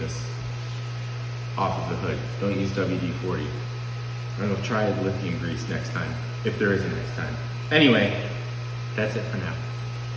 off of the hood. Don't use WD-40. I'm gonna try lithium grease next time, if there is a next time. Anyway, that's it for now.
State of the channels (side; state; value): both; identical; correlation 1.00